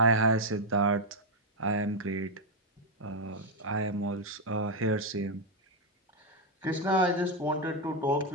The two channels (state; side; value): normal; both; correlation 0.03